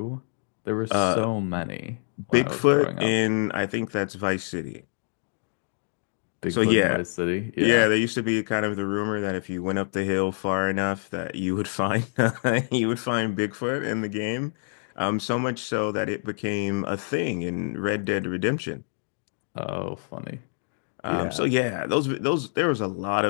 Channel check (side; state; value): right; silent; digital silence